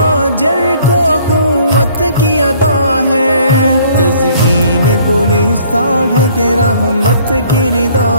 کو اخوت کی ادا ہے، تزئین گلستان ہے کہ رحمت کی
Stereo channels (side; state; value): both; inverted; correlation -0.58